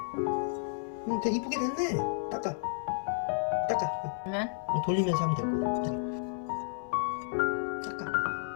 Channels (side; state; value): right; silent; 57 dB below the other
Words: 되게 이쁘게 됐네. 닦아. 그러면 돌리면서 하면 되고. 닦아.